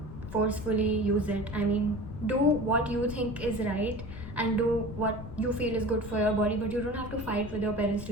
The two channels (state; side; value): noise; left; rumble, 11 dB below the sound